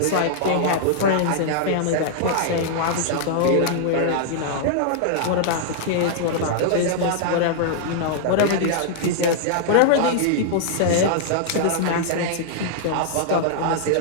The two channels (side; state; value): both; different; correlation -0.01